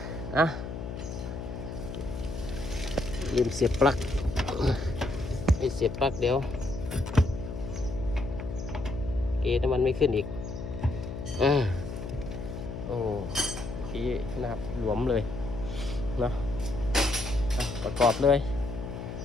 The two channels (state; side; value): noise; left; hum, 7 dB below the sound